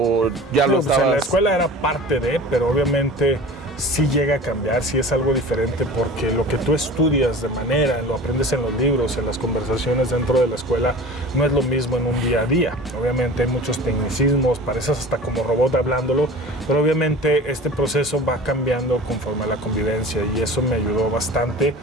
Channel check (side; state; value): both; normal; correlation 0.39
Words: ya lo estabas? En la escuela era parte de, pero obviamente sí llega a cambiar, sí es algo diferente, porque lo que tú estudias de manera, lo aprendes en los libros, en las conversaciones dentro de la escuela, no es lo mismo en un día a día. Obviamente hay muchos tecnicismos, pareces hasta como robot hablándolo, pero obviamente este proceso va cambiando conforme a la convivencia, y eso me ayudó bastante.